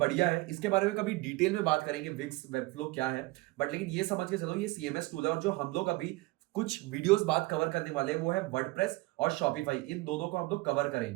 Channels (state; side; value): quieter; left; 22.1 dB